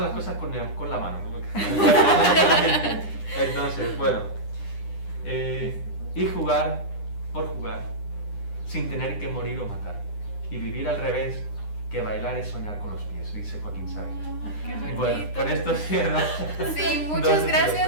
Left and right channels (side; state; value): right; late; 9.9 ms